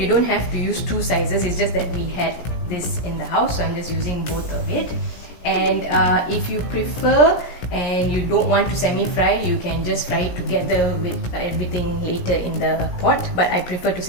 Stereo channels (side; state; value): right; late; 17 ms